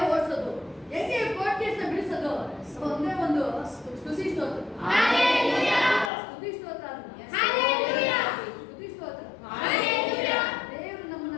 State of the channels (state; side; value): drops out; right; at 6.1 s